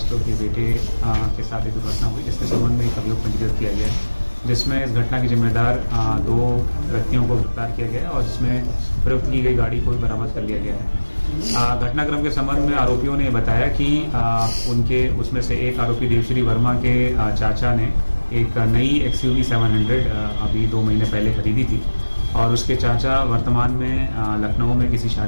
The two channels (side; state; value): both; inverted; correlation -1.00